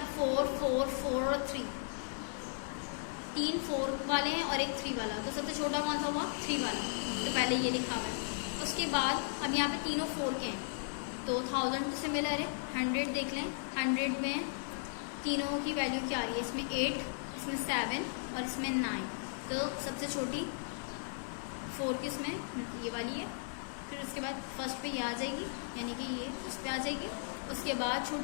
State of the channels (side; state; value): right; silent; 54 dB below the other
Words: 4 4 4 और 3 4 वाले हैं और एक 3 वाला, तो सबसे छोटा कौन सा हुआ 3 वाला, तो पहले ये लिखा हुआ है। उसके बाद अब यहाँ पे तीनों 4 के हैं, तो 1000 तो सिमिलर है। 100 देख लें, 100 में तीनों की वैल्यू क्या आ रही है, इसमें 8, इसमें 7 और इसमें 9, तो सबसे छोटी 4 की इसमें ये वाली है। फिर उसके बाद फर्स्ट पे ये आ जाएगी, यानी कि ये उस पर आ जाएगी। उसके बाद